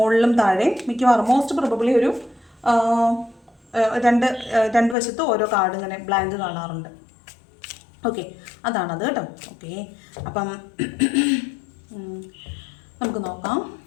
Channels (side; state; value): right; drops out; at 5.0 s